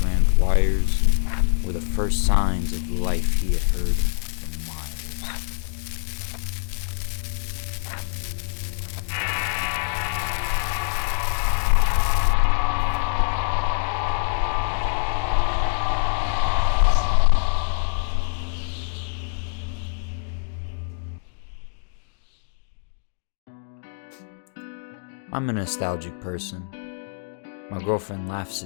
wires were the first signs of life he had heard for miles. I'm a nostalgic person. My girlfriend laughs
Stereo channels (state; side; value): silent; right; digital silence